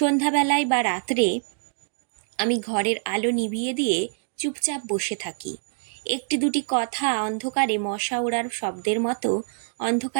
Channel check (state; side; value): silent; left; digital silence